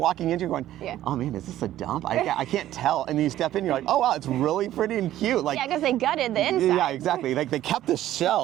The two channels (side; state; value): left; quieter; 13.3 dB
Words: walking into, you're going, oh man, is this a dump? I can't tell, and then you step in, you're like, oh wow, it's really pretty and cute, like. Yeah, because they gutted the inside. Yeah, exactly, like they kept the